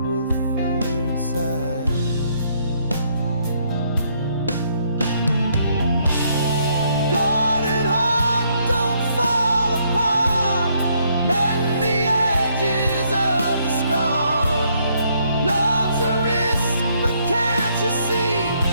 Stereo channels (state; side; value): inverted; both; correlation -0.71